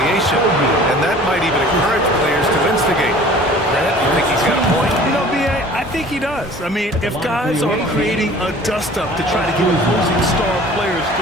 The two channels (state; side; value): normal; both; correlation 0.47